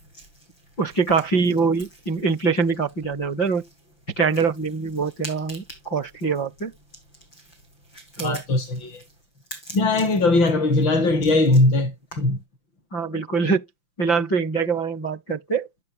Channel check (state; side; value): late; right; 5.9 ms